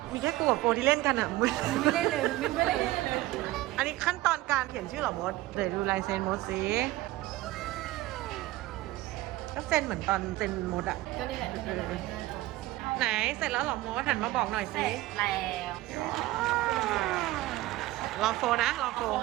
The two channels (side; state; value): left; quieter; 17.5 dB